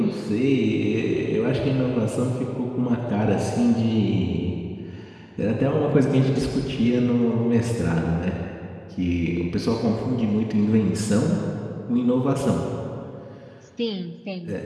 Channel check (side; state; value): both; identical; correlation 1.00